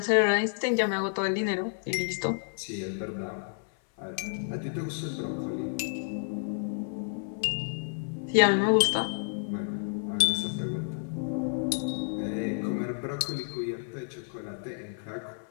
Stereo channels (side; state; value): right; silent; 57 dB below the other